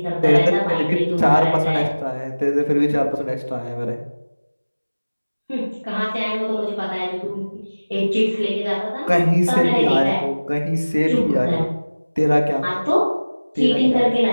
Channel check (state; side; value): inverted; both; correlation -1.00